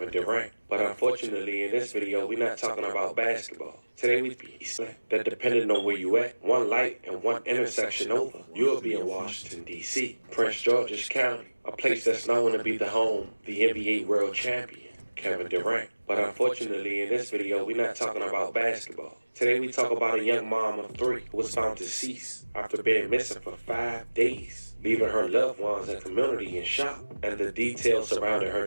Durant. But unfortunately, in this video, we're not talking about basketball. Today we be that, depending on where you at, one light and one intersection over, you'll be in Washington, D.C., Prince George's County, a place that's known to be the home of the NBA world champion, Kevin Durant. But unfortunately, in this video, we're not talking about basketball. Today we talk about a young mom of 3 who was found deceased after being missing for 5 days, leaving her loved ones and community in shock. And the details surrounding her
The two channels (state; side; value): inverted; both; correlation -1.00